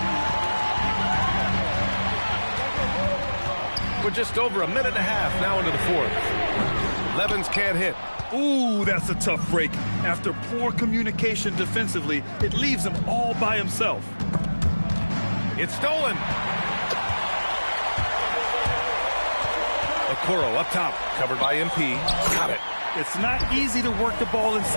We're just over a minute and a half now into the fourth. Levens can't hit. Ooh, that's a tough break. After poor communication defensively, it leaves him all by himself. It's stolen. Okoro up top, covered by MP. Got it. It's not easy to work the ball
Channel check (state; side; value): inverted; both; correlation -1.00